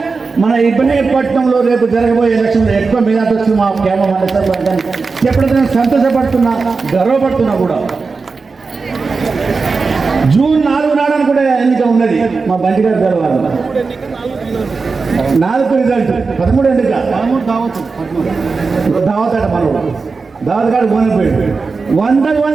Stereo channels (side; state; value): left; quieter; 4.4 dB